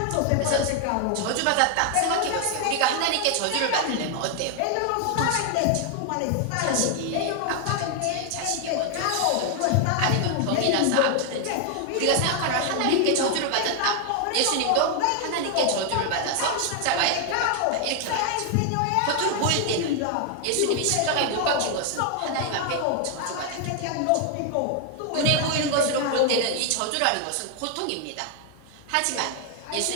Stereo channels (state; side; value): different; both; correlation 0.00